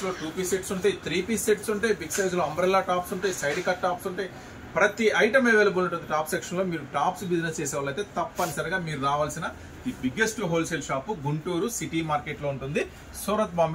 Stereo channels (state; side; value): identical; both; correlation 1.00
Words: 2 పీస్ సెట్స్ ఉంటాయి, 3 పీస్ సెట్స్ ఉంటాయి, బిగ్ సైజులో అంబ్రెల్లా టాప్స్ ఉంటాయి, సైడ్ కట్ టాప్స్ ఉంటాయి. ప్రతి ఐటమ్ అవైలబుల్ ఉంటుంది టాప్ సెక్షన్లో. మీరు టాప్స్ బిజినెస్ చేసే వాళ్ళైతే తప్పనిసరిగా మీరు రావాల్సిన the biggest wholesale shop Guntur city మార్కెట్లో ఉంటుంది, Surat